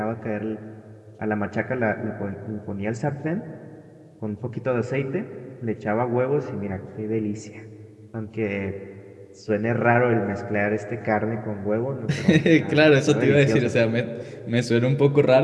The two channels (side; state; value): both; identical; correlation 1.00